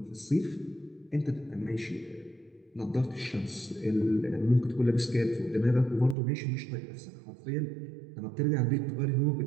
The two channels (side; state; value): left; drops out; at 6.2 s